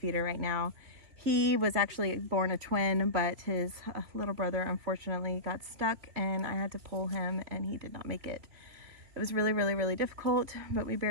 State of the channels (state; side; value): late; left; 3.0 ms